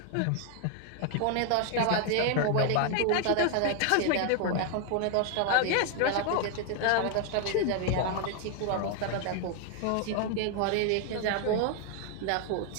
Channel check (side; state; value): both; different; correlation 0.00